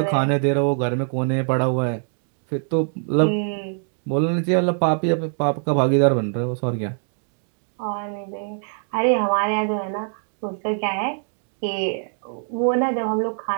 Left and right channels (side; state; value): left; silent; digital silence